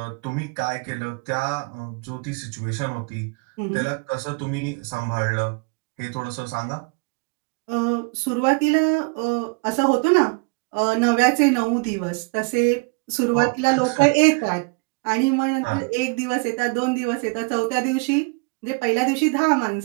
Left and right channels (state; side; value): quieter; left; 30.9 dB